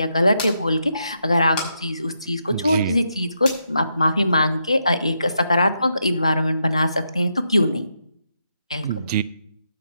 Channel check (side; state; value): both; inverted; correlation -0.81